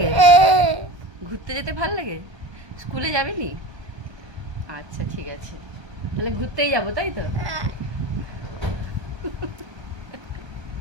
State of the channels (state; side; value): late; left; 1.2 ms